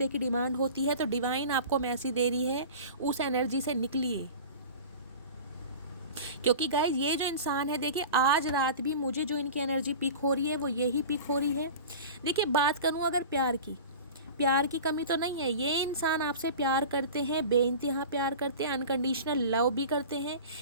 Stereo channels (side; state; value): both; inverted; correlation -0.36